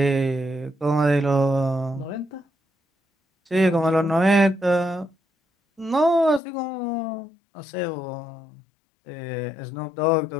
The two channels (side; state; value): right; drops out; at 6.4 s